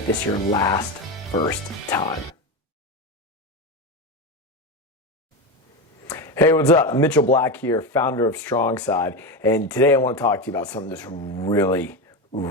this your first time. Hey, what's up? Mitchell Black here, founder of Strongside, and today I want to talk to you about something that's really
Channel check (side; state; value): both; normal; correlation 0.17